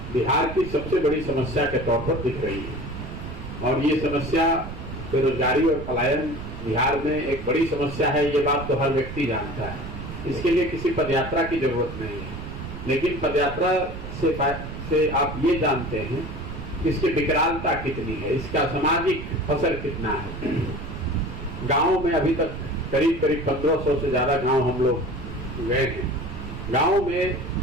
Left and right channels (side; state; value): right; noise; rumble, 9 dB below the sound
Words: बिहार की सबसे बड़ी समस्या के तौर पर दिख रही है। और ये समस्या बेरोजगारी और पलायन बिहार में एक बड़ी समस्या है, ये बात तो हर व्यक्ति जानता है। इसके लिए किसी पदयात्रा की जरूरत नहीं है, लेकिन पदयात्रा से आप ये जानते हैं कि इसकी विकरालता कितनी है, इसका सामाजिक असर कितना है। गाँव में अभी तक करीब 1500 से ज्यादा गांव हम लोग गए हैं। गांव में